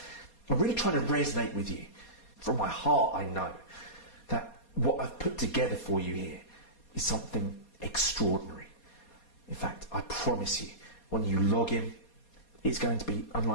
I'm really trying to resonate with you. From my heart, I know that what I've put together for you here is something extraordinary. In fact, I promise you, when you log in, it's going to be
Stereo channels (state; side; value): late; right; 4.2 ms